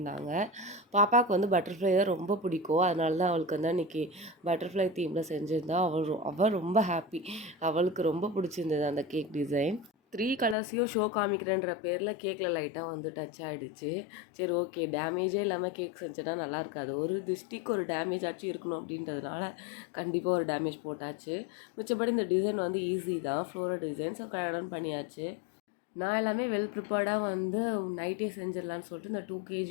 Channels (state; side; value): drops out; right; at 10.6 s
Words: பாப்பாவுக்கு வந்து பட்டர்ஃப்ளை தான் ரொம்ப பிடிக்கும். அதனால தான் அவளுக்கு வந்து அன்னைக்கு பட்டர்ஃப்ளை தீம்ல செஞ்சிருந்தா. அவ ரொம்ப ஹாப்பி. அவளுக்கு ரொம்ப பிடிச்சிருந்தது அந்த கேக் டிசைன். 3 கலர்ஸையும் ஷோ காமிக்கிறேன்ற பேரில் கேக்கில் லைட்டாக வந்து டச் ஆகிடுச்சு. சரி ஓகே, டேமேஜே இல்லாமல் கேக் செஞ்சேன்னா நல்லா இருக்காது. ஒரு திஷ்டிக்கு ஒரு டேமேஜ் ஆச்சும் இருக்கணும் அப்படின்றதுனால கண்டிப்பாக ஒரு டேமேஜ் போட்டாச்சு. மிச்சப்படி இந்த டிசைன் வந்து ஈஸி தான், ஃப்ளோரல் டிசைன். ஸோ கடகடன்னு பண்ணியாச்சு. நான் எல்லாமே வெல் ப்ரிப்பேர்டாக வந்து நைட்டே செஞ்சிடலான்னு சொல்லிட்டு இந்த 2